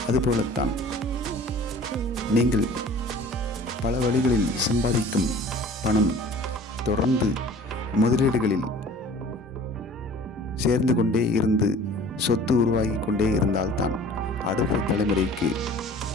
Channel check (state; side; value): normal; both; correlation 0.46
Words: அதுபோலத்தான் நீங்கள் பல வழிகளில் சம்பாதிக்கும் பணம் தொடர்ந்து முதலீடுகளில் சேர்ந்து கொண்டே இருந்து சொத்து உருவாகி கொண்டே இருந்தால்தான் அடுத்த தலைமுறைக்கு